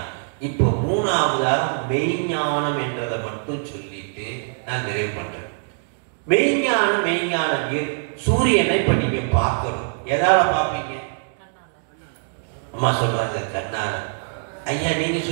இப்போ மூணாவதாக மெய்ஞானம் என்றதை மட்டும் சொல்லிட்டு நான் நிறைவு பண்றேன். மெய்ஞானம் சூரியனை இப்ப நீங்க பார்க்கணும். எதால பார்ப்பீங்க? அம்மா சொல்றாங்க கண்ணால. ஐயா நீங்க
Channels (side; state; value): left; silent; digital silence